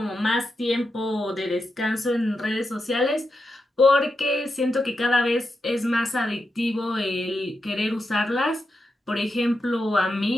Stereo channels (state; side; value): normal; both; correlation 0.87